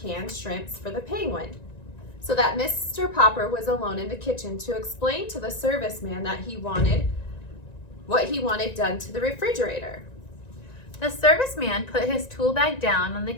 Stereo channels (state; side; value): late; right; 1.9 ms